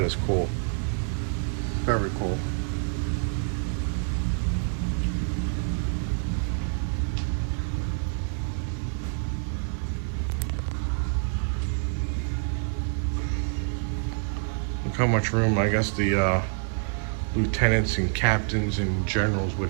is cool. Very cool. How much room I guess the lieutenants and captains and generals would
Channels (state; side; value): silent; left; 58 dB below the other